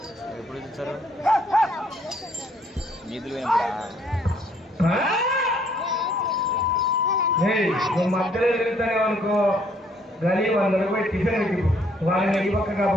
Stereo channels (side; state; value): both; normal; correlation 0.65